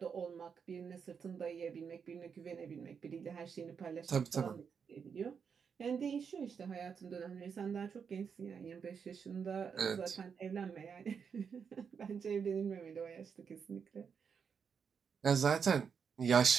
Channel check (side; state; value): left; quieter; 6.5 dB